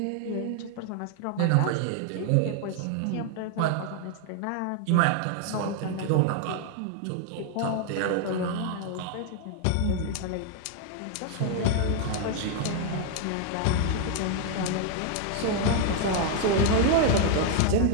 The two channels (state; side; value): different; both; correlation 0.00